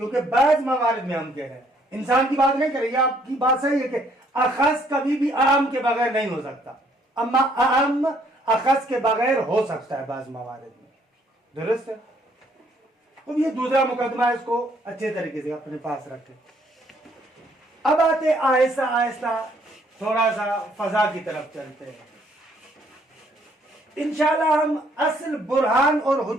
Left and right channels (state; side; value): normal; both; correlation 0.66